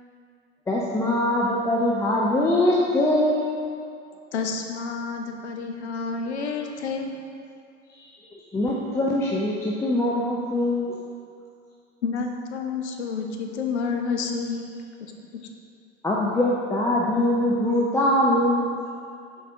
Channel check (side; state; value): both; normal; correlation 0.39